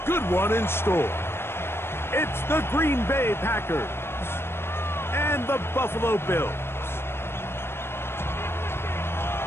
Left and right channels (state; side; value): late; right; 0.12 ms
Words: good one in store. It's the Green Bay Packers and the Buffalo Bills.